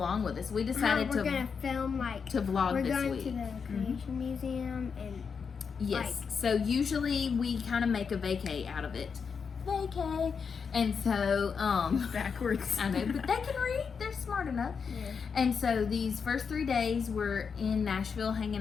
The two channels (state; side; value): quieter; right; 6.0 dB